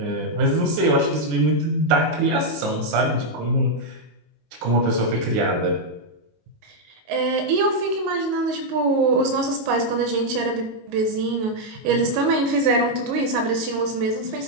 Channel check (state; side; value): late; left; 19 ms